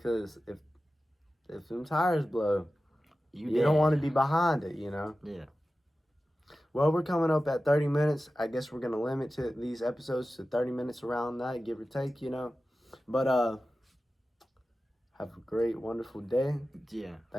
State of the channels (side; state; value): both; normal; correlation 0.94